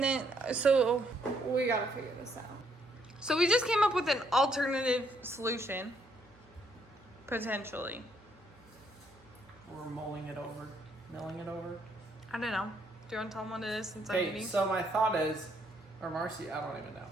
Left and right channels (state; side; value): normal; both; correlation 0.71